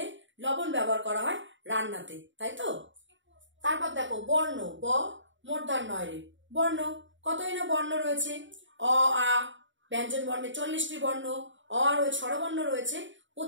লবণ ব্যবহার করা হয় রান্নাতে, তাই তো? তারপর দেখো বর্ণ, ব মূর্ধন্যয় রে, বর্ণ। কতই না বর্ণ রয়েছে, অ আ ব্যঞ্জন বর্ণে 40টি বর্ণ, অ রয়েছে, স্বরবর্ণ রয়েছে,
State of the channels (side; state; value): left; late; 0.55 ms